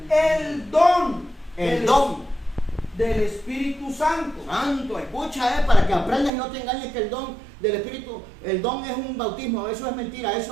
el don del Espíritu Santo. Santo, escucha, para que aprendas y no te engañes que el don del Espíritu, el don es un bautismo, eso es mentira,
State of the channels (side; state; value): left; drops out; at 6.3 s